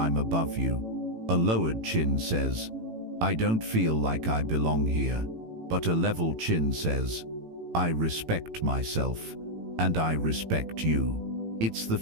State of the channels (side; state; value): left; late; 18 ms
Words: above you." A lowered chin says, "I don't feel like I belong here." But a level chin says, "I respect myself, and I respect you." It's the